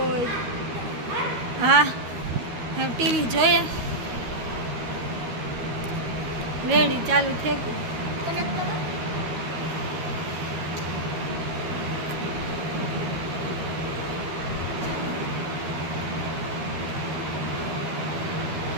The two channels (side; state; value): left; late; 13 ms